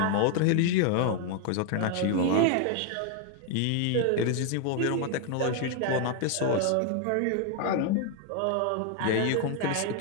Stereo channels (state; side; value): different; both; correlation 0.00